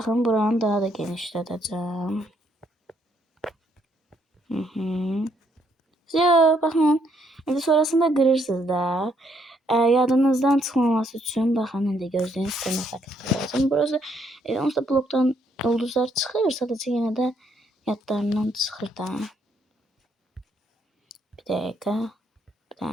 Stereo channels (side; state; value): both; normal; correlation 0.71